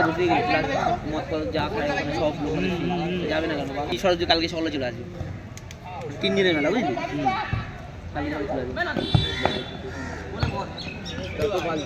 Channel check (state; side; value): identical; both; correlation 1.00